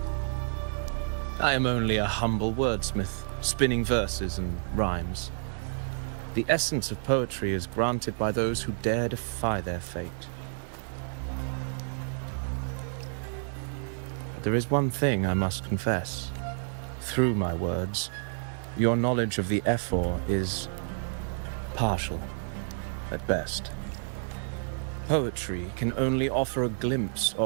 I am only a humble wordsmith, spinning verses and rhymes. The essence of poetry is granted by those who dare defy their fate. But there is one thing I must confess. Through my words, your knowledge of the Ephor is partial, at best. Poetry can only offer a glimpse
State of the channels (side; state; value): left; silent; digital silence